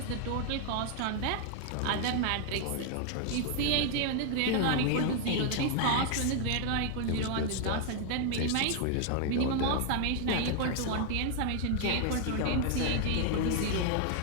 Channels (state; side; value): different; both; correlation 0.00